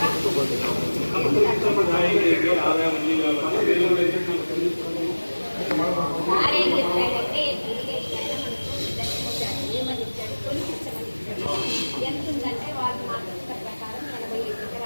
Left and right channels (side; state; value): both; inverted; correlation -1.00